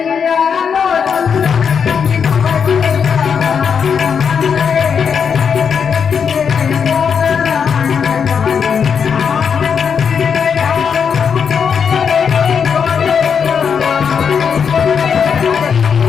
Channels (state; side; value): quieter; right; 6.7 dB